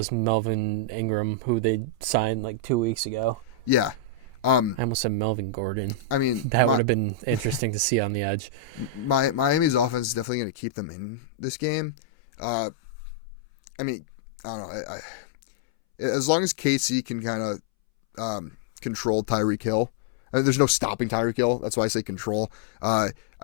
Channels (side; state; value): right; drops out; at 10.2 s